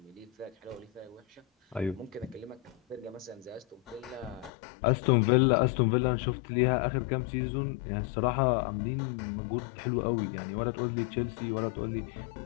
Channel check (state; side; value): drops out; right; at 4.5 s